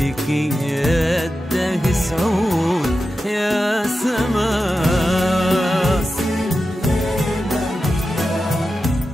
يده سعود يا سما.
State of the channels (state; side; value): normal; both; correlation 0.91